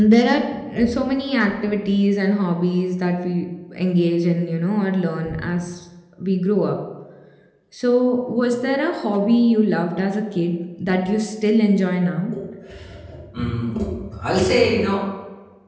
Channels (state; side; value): identical; both; correlation 1.00